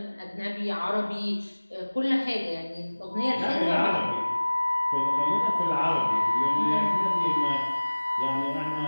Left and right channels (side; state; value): both; inverted; correlation -1.00